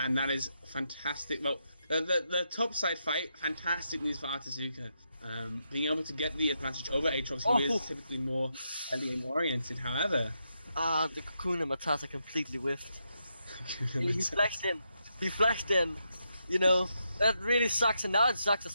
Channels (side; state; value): both; inverted; correlation -0.82